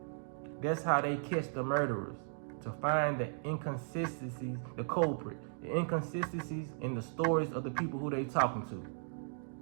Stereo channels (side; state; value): left; silent; digital silence